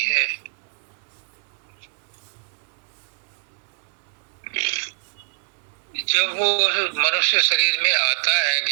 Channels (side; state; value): left; silent; 62 dB below the other